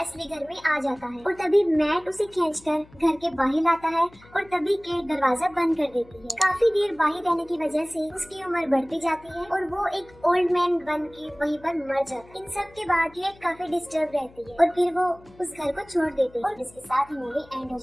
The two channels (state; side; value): noise; left; hum, 25 dB below the sound